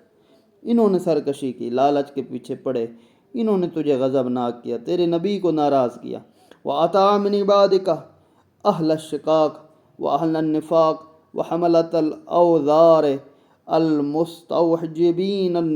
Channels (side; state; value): both; identical; correlation 1.00